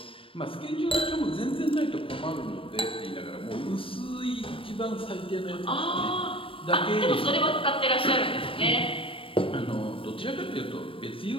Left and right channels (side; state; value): right; late; 0.26 ms